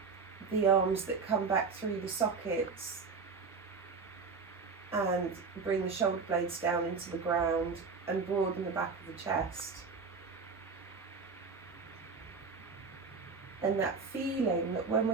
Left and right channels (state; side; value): quieter; left; 4.8 dB